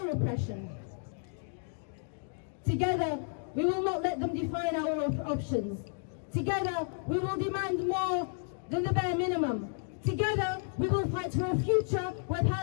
repression. Together, we will not let them define our options. Together, we will demand more than the bare minimum. Together, we will fight for a future where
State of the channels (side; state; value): right; silent; 55 dB below the other